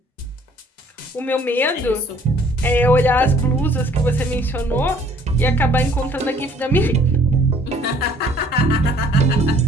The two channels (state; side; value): normal; both; correlation 0.58